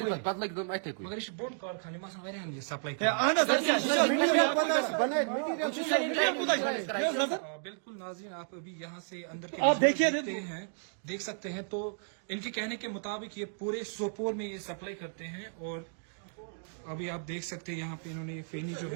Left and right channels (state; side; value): silent; left; digital silence